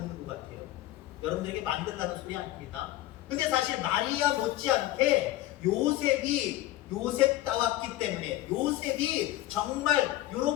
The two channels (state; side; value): quieter; right; 15.2 dB